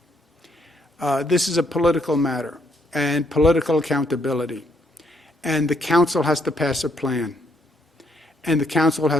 This is a political matter and political accountability. And the council has to pass a plan. And the council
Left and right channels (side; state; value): both; normal; correlation 0.72